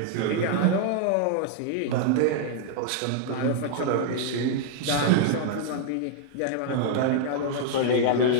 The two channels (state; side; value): different; both; correlation -0.01